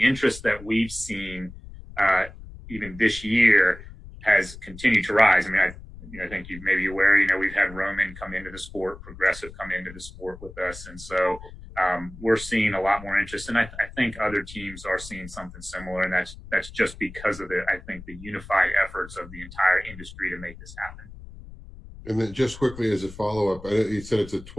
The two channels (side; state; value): left; noise; rumble, 16 dB below the sound